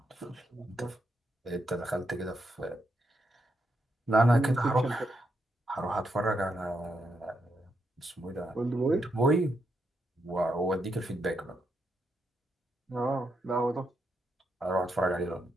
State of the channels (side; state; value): both; normal; correlation 0.81